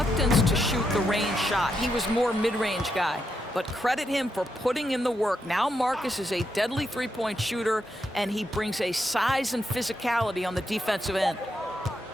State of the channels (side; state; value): both; normal; correlation 0.82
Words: to shoot the range shot. He was more mid-range guy, but credit him for putting in the work. Now Marcus is a deadly three-point shooter, and he brings a size and physicality on the defensive end.